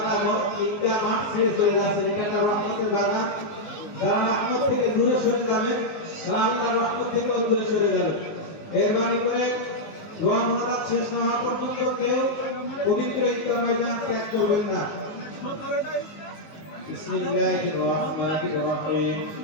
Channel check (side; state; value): right; late; 19 ms